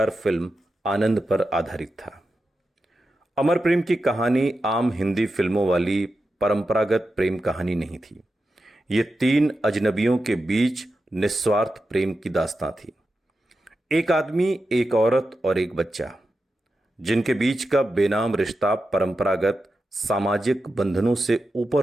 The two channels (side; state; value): both; normal; correlation 0.90